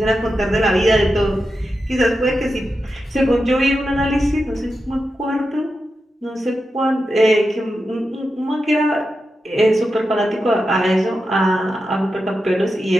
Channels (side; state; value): both; normal; correlation 0.89